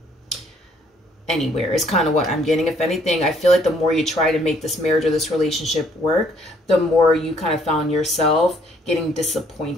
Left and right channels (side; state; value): both; normal; correlation 0.64